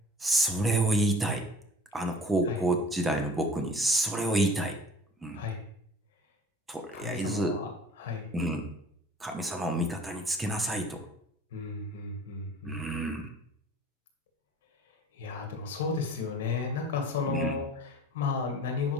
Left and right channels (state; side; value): normal; both; correlation 0.45